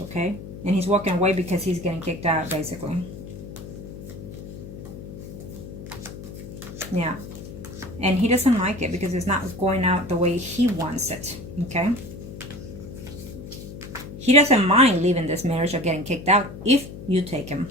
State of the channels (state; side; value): noise; left; hum, 12 dB below the sound